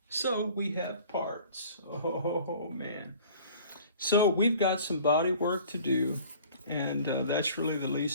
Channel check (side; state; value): both; inverted; correlation -0.48